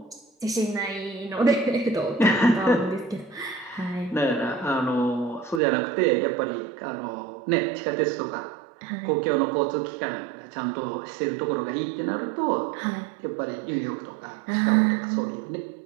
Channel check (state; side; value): drops out; left; at 5.6 s